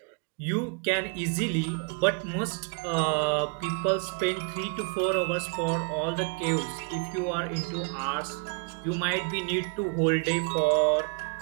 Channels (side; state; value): left; quieter; 33.6 dB